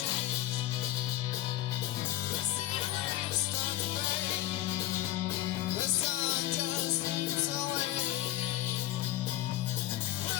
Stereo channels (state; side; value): quieter; right; 14.9 dB